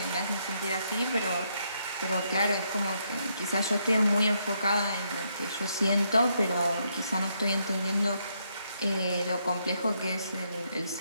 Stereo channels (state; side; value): inverted; both; correlation -0.76